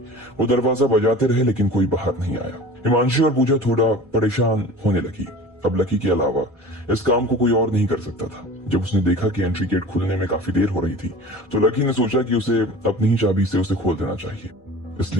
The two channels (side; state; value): both; normal; correlation 0.40